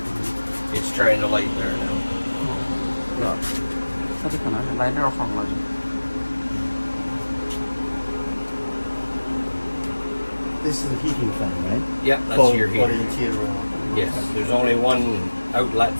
It's trying to light there now. 它这可能是来热风了就。 This is a heating fan, right? Yep, that's for, your for the heater. interior. Yes, there's only one outlet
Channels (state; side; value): inverted; both; correlation -1.00